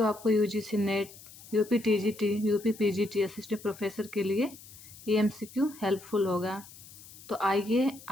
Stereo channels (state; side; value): noise; left; hiss, 19 dB below the sound